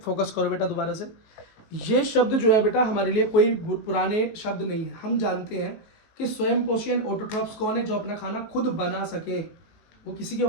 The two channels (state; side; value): late; right; 18 ms